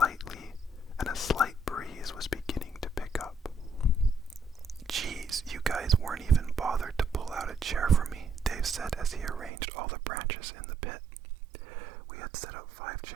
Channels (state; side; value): drops out; left; at 9.5 s